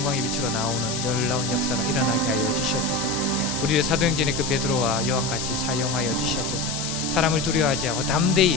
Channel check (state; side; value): noise; left; hiss, 5 dB below the sound